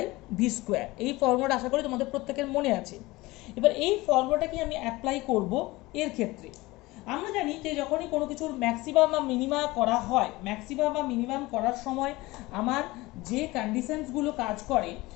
V square. এই ফর্মুলাটা আশা করি তোমাদের প্রত্যেকের মনে আছে। এবার এই ফর্মুলাটাকে আমি অ্যাপ্লাই করব এর ক্ষেত্রে। আমরা জানি যে যখনই কোনো কিছুর ম্যাক্সিমাম বা মিনিমাম করা হয়, ম্যাক্সিমাম বা মিনিমাম করার সময় আমার যে কন্ডিশনসগুলো কাজ করে,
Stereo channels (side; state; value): right; quieter; 20.7 dB